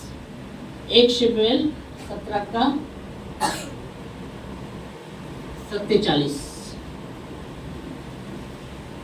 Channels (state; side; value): identical; both; correlation 1.00